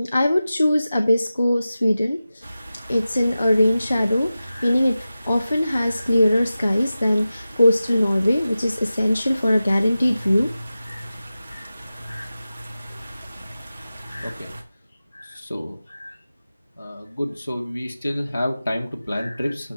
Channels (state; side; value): inverted; both; correlation -0.95